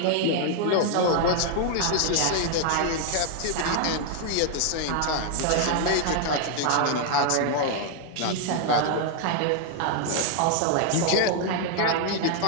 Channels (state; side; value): different; both; correlation 0.00